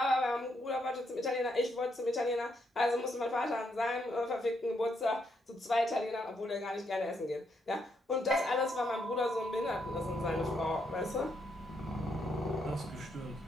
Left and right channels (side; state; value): both; normal; correlation 0.77